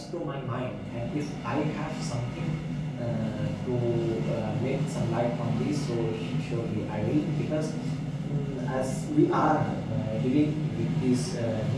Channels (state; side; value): identical; both; correlation 1.00